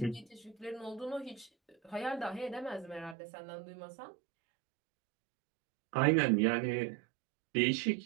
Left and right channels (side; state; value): left; drops out; at 3.2 s